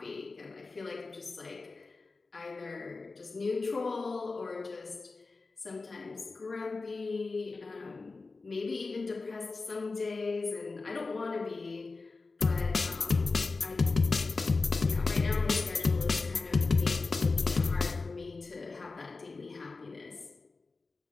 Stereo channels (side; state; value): right; quieter; 3.9 dB